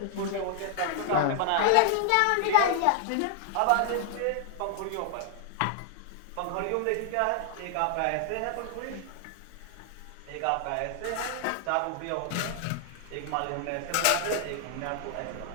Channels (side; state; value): both; different; correlation 0.00